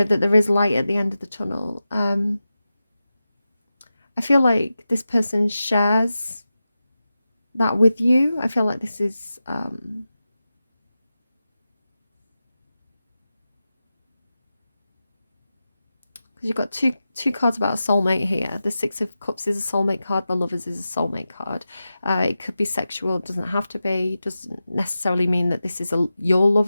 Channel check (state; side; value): inverted; both; correlation -0.92